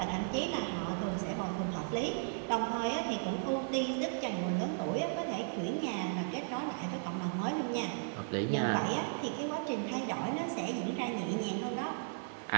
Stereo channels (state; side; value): silent; left; digital silence